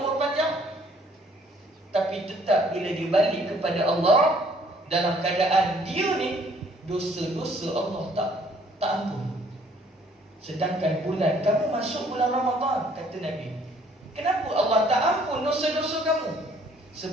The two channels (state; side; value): normal; both; correlation 0.60